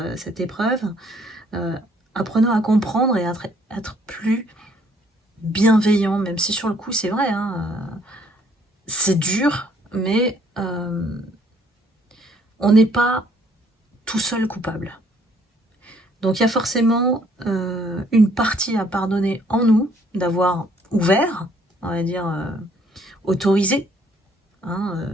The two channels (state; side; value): normal; both; correlation 0.64